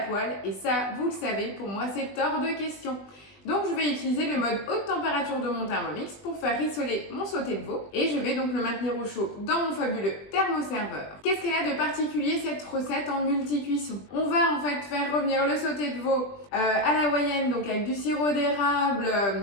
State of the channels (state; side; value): late; right; 20 ms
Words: poêle et ça, vous le savez, pour moi c'est hors de question. Donc je vais utiliser le mode haute température de mon Thermomix pour faire rissoler mon sauté de veau et je vais donc le maintenir au chaud dans mon fabuleux thermoserveur. Qu'est-ce qu'elle a de particulier cette recette en multi-cuisson? On va en fait faire revenir le sauté de veau à l'hawaïenne, donc avec du sirop d'érable